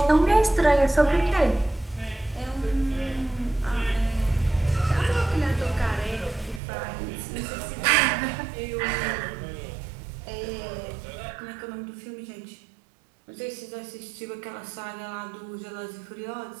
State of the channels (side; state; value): left; drops out; at 6.6 s